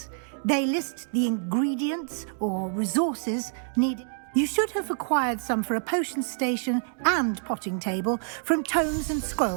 They list the ingredients or resources needed. You should have acquired some for a potion station and potting table from tomes and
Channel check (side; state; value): left; silent; digital silence